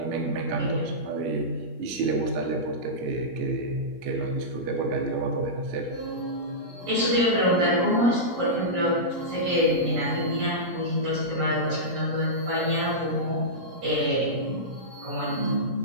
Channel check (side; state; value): left; late; 17 ms